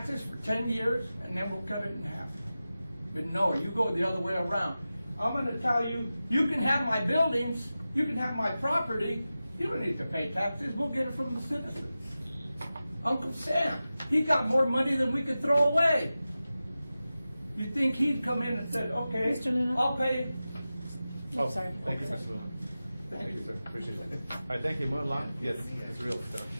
for 10 years, and then we'll cut it in half. But no, you go the other way around. I'm going to tell you, you can have my buildings, you can have my property, you don't need to pay taxes, we'll get it from the citizens. Uncle Sam, he got more money than we could throw away. You think he'd come in and said, okay, Mr. Luna? I'll pay. Oh, sorry. thank you, Mr. Luna. Thank you, sir. Appreciate it. All right, thank you. Moving along. Yes, it's real stuff.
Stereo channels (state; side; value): inverted; both; correlation -0.94